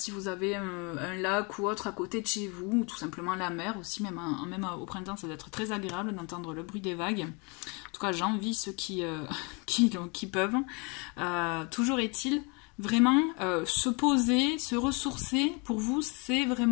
vous avez un lac ou autre à côté de chez vous, ou tout simplement la mer aussi, même au printemps, ça doit être très agréable d'entendre le bruit des vagues. En tout cas, j'envie ceux qui peuvent. Toujours est-il, vraiment, se poser, se ressourcer, pour vous, c'est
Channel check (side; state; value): right; quieter; 31.4 dB